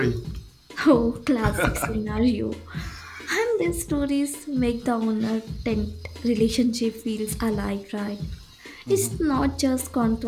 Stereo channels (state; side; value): identical; both; correlation 1.00